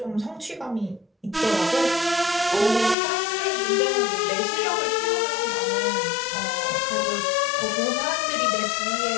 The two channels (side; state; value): right; drops out; at 3.0 s